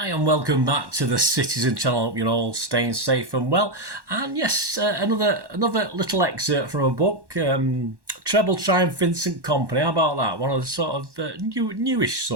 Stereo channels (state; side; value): late; left; 1.1 ms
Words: welcome back to the Citizen channel. Hope you're all staying safe and well. And yes, another little excerpt from a book, Treble trying Vincent Kompany. How about that? One of the sort of newish